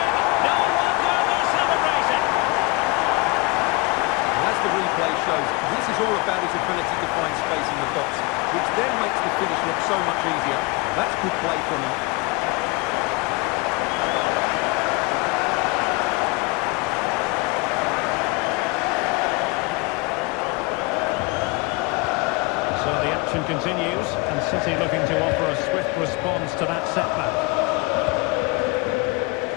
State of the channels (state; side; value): quieter; right; 26.0 dB